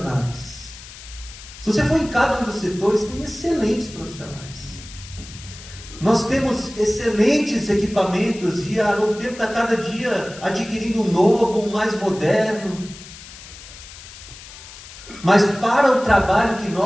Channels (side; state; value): left; noise; hiss, 16 dB below the sound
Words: Se você for em cada um dos setores, tem excelentes profissionais. Nós temos excelentes equipamentos e a Novo Tempo está cada dia adquirindo um novo, um mais moderno. Mas para o trabalho que